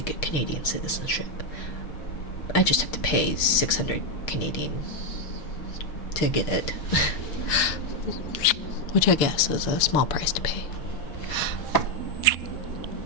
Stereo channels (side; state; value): right; late; 6.6 ms